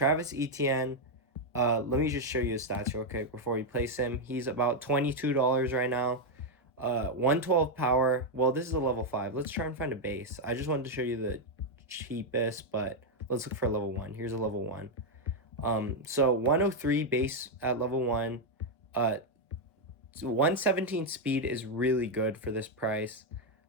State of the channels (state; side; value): normal; both; correlation 0.01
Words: Etienne, let me just show you his stats real quick before we place him. He's about $22 right now. 112 power. Well, this is a level 5. Let's try and find a base. I just wanted to show you the cheapest, but let's look for a level 1. Here's a level 1. So 103 base at level 1. 117 speed is really good for this price.